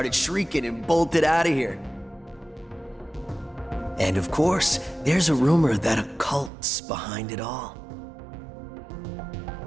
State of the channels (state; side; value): drops out; left; at 6.5 s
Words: shrieking and bolted out of here. And of course, there's a rumor that a cult's behind it all.